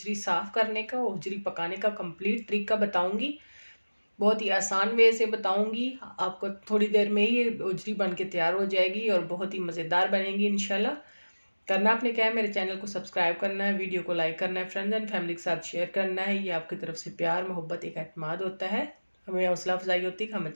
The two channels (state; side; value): inverted; both; correlation -1.00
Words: साफ़ करने का, उजरी पकाने का कंप्लीट तरीका बताऊंगी। बहुत ही आसान वे से बताऊंगी। आपको थोड़ी देर में ही उजरी बन के तैयार हो जाएगी और बहुत ही मज़ेदार बनेगी इंशाल्लाह। करना आपने क्या है, मेरे चैनल को सब्सक्राइब करना है, वीडियो को लाइक करना है, फ्रेंड्स एंड फैमिली के साथ शेयर करना है। ये आपकी तरफ से प्यार, मोहब्बत, एक एतमाद होता है। हमें हौसला अफजाई होती है कि हम